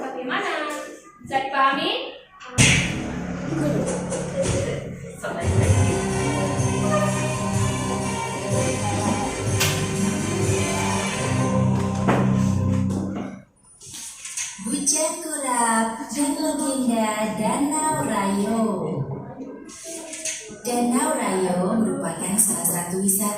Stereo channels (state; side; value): identical; both; correlation 1.00